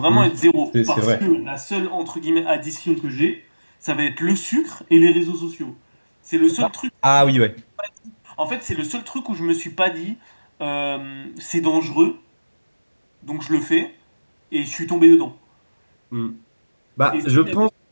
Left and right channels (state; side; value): inverted; both; correlation -1.00